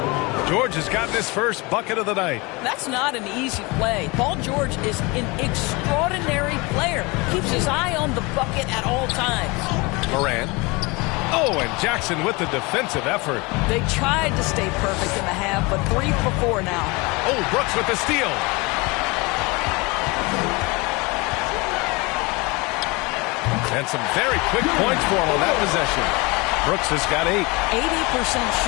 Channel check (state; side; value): quieter; right; 25.6 dB